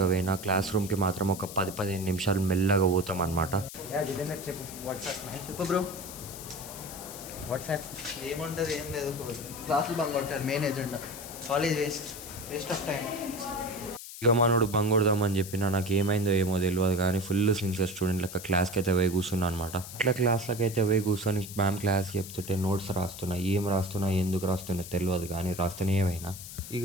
పోయినా క్లాస్ రూమ్కి మాత్రం ఒక 10-15 నిమిషాలు మెల్లగా పోతాం అనమాట. బ్రో వాట్సాప్ ఏముంటుంది, ఏం లేదు. క్లాసులు బంగ్ కొట్టారు, main agenda. College waste of time. ఇక మనోడు బంగొడదామని చెప్పినా నాకు ఏమైందో ఏమో తెలియదు కానీ ఫుల్ సిన్సియర్ స్టూడెంట్ లెక్క క్లాస్కి అయితే పోయి కూర్చున్నా అనమాట. అట్లా క్లాస్లకి అయితే పోయి కూర్చొని మ్యామ్ క్లాస్కి చెప్తుంటే నోట్స్ రాస్తున్నా, ఏం రాస్తున్నా ఎందుకు రాస్తున్నా తెలియదు కానీ రాస్తూనే ఏమైనా.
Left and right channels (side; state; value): left; noise; hiss, 12 dB below the sound